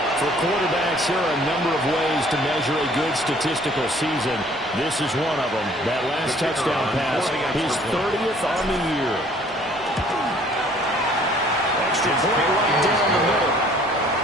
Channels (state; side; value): normal; both; correlation 0.57